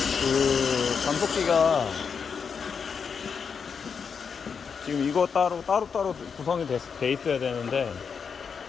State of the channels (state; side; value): quieter; right; 6.2 dB